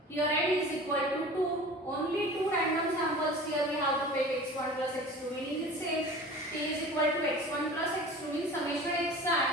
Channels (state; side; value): normal; both; correlation 0.39